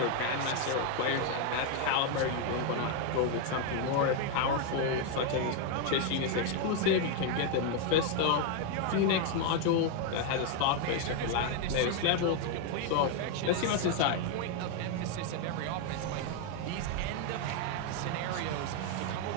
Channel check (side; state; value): both; different; correlation 0.01